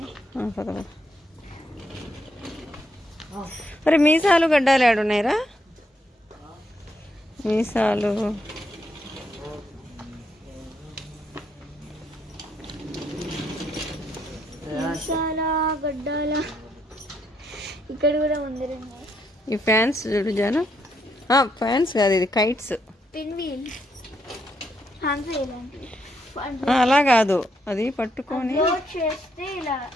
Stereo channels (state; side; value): normal; both; correlation 0.76